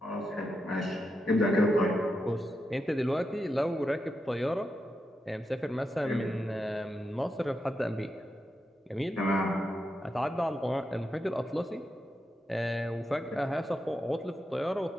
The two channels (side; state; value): both; normal; correlation 0.86